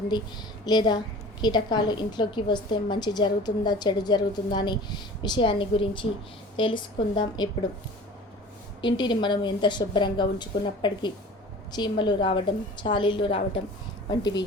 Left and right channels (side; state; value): both; normal; correlation 0.42